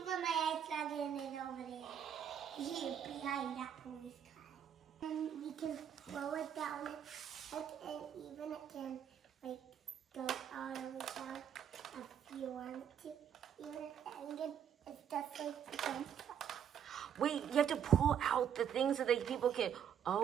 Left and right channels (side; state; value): left; quieter; 8.7 dB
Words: my ice dragon is over there. Here, behind that police car. And we can throw it down, and even it can like go all the way down if you want to. Even it's just like the fence. Wait, you have to pull out the things so that people can.